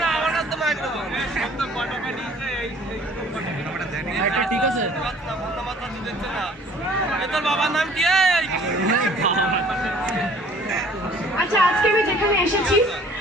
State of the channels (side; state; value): both; normal; correlation 0.53